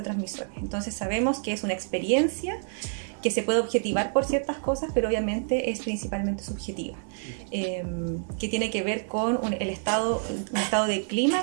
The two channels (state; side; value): silent; left; digital silence